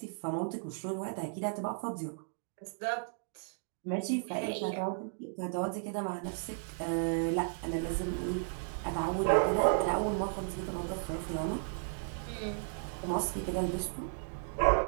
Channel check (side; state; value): left; silent; digital silence